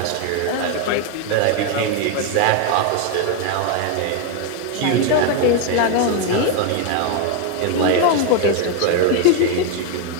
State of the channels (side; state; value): both; different; correlation 0.01